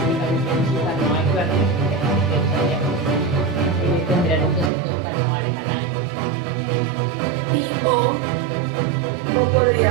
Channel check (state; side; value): drops out; left; at 4.7 s